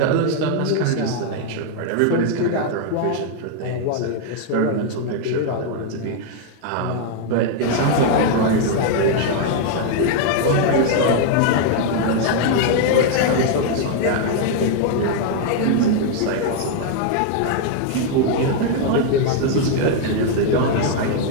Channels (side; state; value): both; different; correlation 0.00